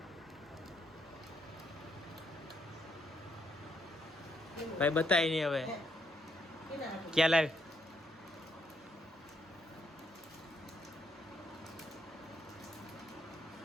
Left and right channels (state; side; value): normal; both; correlation 0.75